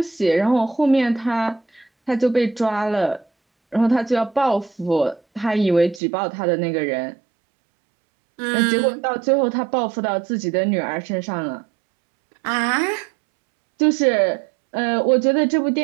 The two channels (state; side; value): drops out; left; at 6.0 s